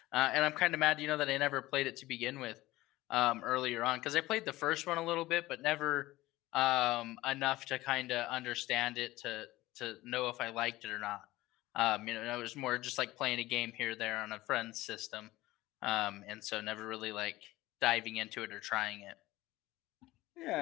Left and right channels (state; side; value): quieter; right; 18.0 dB